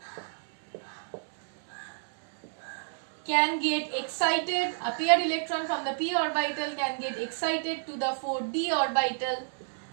can get excited, a paired electron from the p orbital can get excited to the 4d orbital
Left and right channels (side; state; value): left; silent; 57 dB below the other